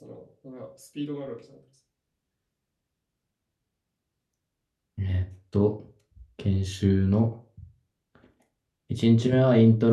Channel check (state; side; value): identical; both; correlation 1.00